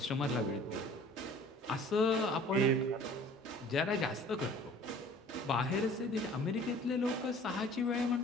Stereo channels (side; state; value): both; normal; correlation 0.48